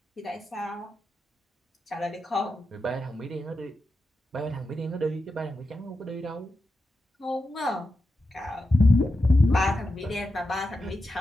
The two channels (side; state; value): both; normal; correlation 0.89